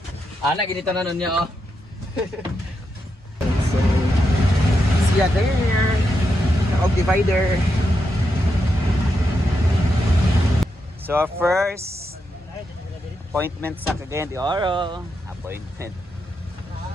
Ana ginito na nun niya oh. so, siya there. Naog divider. So, our first appointment sa Cagayan de Oro. Appointment.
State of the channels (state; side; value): normal; both; correlation 0.84